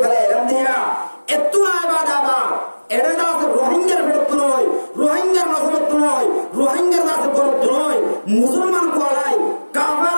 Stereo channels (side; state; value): both; inverted; correlation -1.00